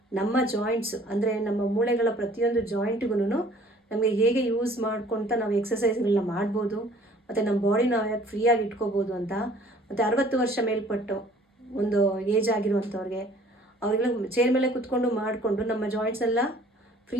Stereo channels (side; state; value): both; normal; correlation 0.54